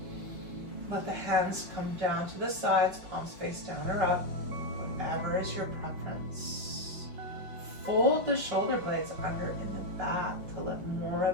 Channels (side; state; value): left; late; 5.7 ms